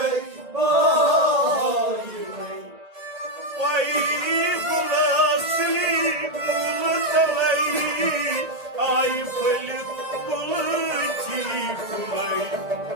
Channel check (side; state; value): left; late; 1.8 ms